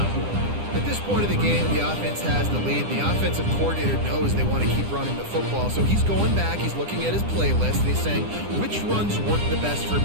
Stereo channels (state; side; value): late; left; 9.9 ms